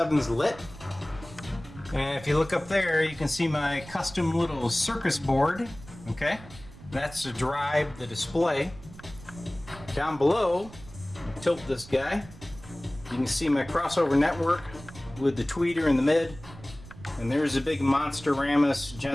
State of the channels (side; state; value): right; noise; rumble, 18 dB below the sound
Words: lit. And if you look up there, you can see my custom little circus board. Okay, that's to drive the display. Down below, tilt this guy, you can see my crossover network with the tweeter in the mid. And there's a big Monster-Ramus